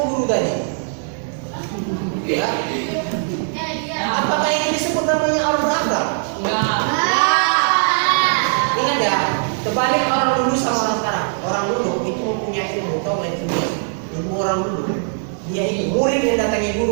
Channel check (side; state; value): left; silent; 66 dB below the other